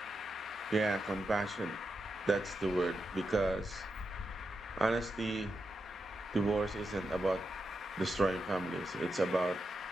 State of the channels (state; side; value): normal; both; correlation 0.87